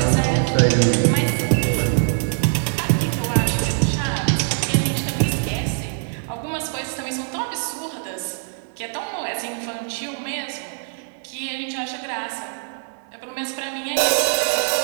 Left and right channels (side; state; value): left; silent; digital silence